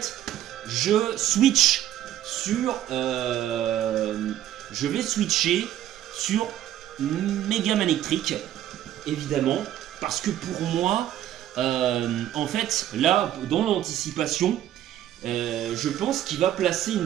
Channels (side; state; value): left; quieter; 12.2 dB